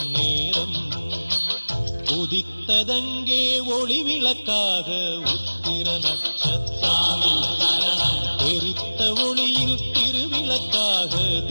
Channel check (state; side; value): inverted; both; correlation -1.00